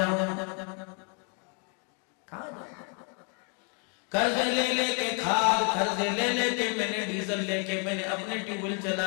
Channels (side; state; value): right; quieter; 38.7 dB